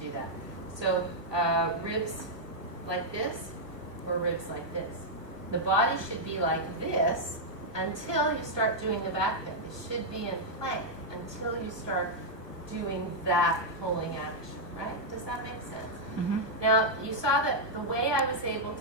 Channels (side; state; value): left; late; 1.2 ms